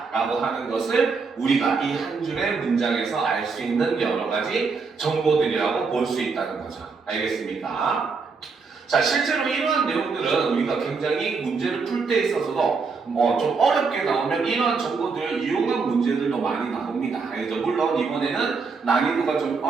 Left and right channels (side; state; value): left; quieter; 4.8 dB